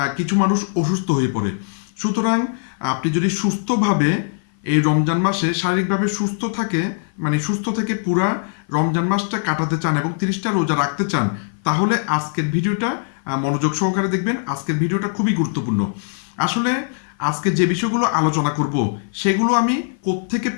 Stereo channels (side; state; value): right; silent; 56 dB below the other